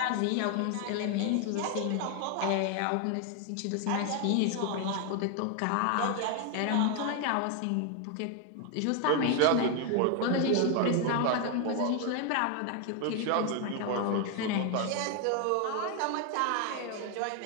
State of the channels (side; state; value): both; different; correlation 0.01